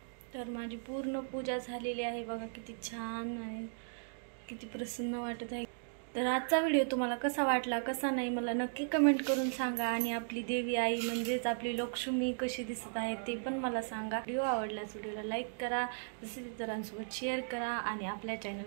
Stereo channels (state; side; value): silent; left; digital silence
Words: तर माझी पूर्ण पूजा झालेली आहे बघा, किती छान आहे, किती प्रसन्न वाटत आहे. तर आजचा व्हिडिओ तुम्हाला कसा वाटला कसा नाही मला नक्की कमेंट करून सांगा. आणि आपली देवी आई म्हणजेच आपली लक्ष्मी कशी दिसत आहे ते पण मला सांगा. व्हिडिओ आवडल्यास व्हिडिओला लाईक करा, तसेच इतरांसोबत शेअर करा आणि आपल्या